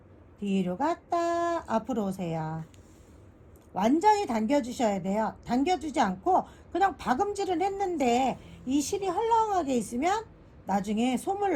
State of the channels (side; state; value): both; identical; correlation 1.00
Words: 뒤로 갔다 앞으로 오세요. 완전히 당겨주셔야 돼요. 당겨주지 않고 그냥 박음질을 했는데 이 실이 헐렁하게 있으면 나중에 솜을